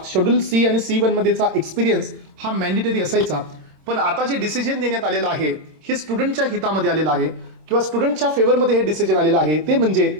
शेड्यूल C आणि C1 मध्येचा एक्सपिरियन्स हा मॅन्डेटरी असायचा. पण आता जे डिसिजन देण्यात आलेलं आहे हे स्टुडंटच्या हितामध्ये आलेलं आहे किंवा स्टुडंटच्या फेवरमध्ये हे डिसिजन आलेलं आहे ते म्हणजे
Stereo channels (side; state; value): left; late; 26 ms